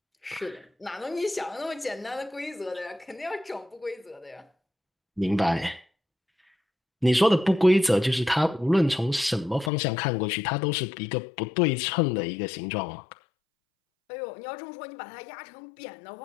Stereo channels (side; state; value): right; drops out; at 9.7 s